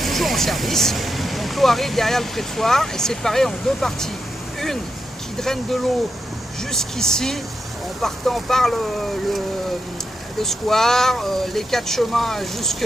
toujours en service. Donc, l'eau arrive derrière le prétoire et séparée en deux parties. Une qui draine de l'eau jusqu'ici, en partant par le square, les 4 chemins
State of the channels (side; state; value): both; normal; correlation 0.85